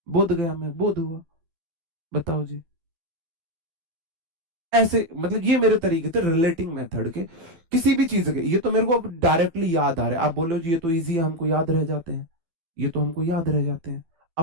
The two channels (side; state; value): left; late; 12 ms